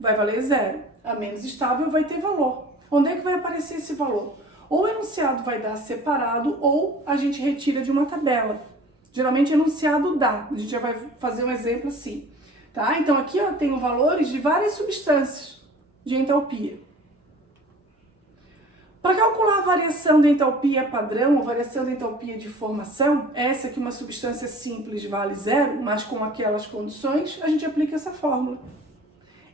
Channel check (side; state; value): both; normal; correlation 0.45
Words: vai valer zero, a menos estável vai ter valor. Onde é que vai aparecer esse valor? Ou o enunciado vai dar separado ou a gente retira de uma tabela. Geralmente enunciado dá, a gente já vai fazer um exemplo assim. Tá? Então aqui eu tenho valores de várias substâncias de entalpia. Para calcular a variação da entalpia padrão ou variação da entalpia de formação, essa que uma substância simples vale zero, mas com aquelas condições, a gente aplica essa fórmula.